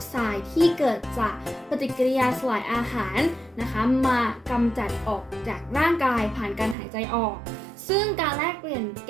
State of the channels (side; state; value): left; drops out; at 6.8 s